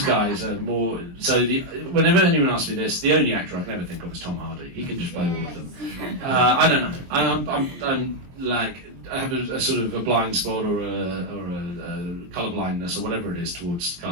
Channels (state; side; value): late; left; 23 ms